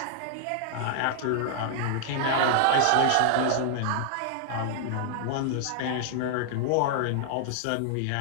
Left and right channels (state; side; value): different; both; correlation -0.01